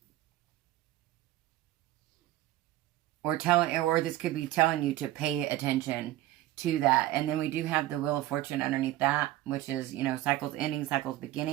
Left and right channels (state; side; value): quieter; left; 15.2 dB